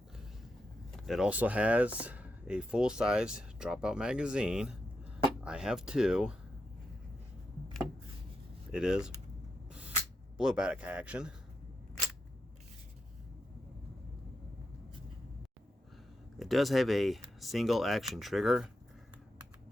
It also has a full-size dropout magazine. I have two. It is blowback action. It does have a single action trigger.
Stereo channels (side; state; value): both; normal; correlation 0.85